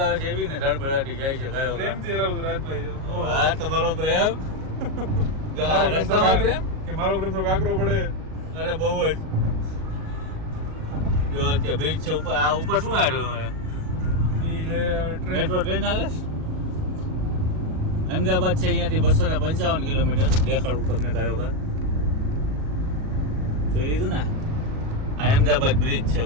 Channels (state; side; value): late; left; 38 ms